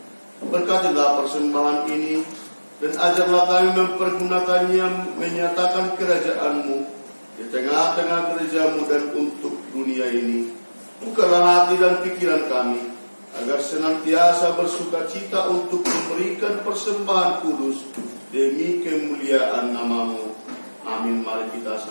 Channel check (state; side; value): inverted; both; correlation -1.00